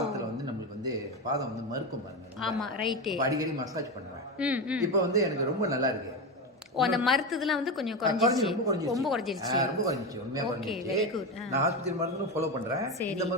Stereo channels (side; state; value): both; normal; correlation 0.17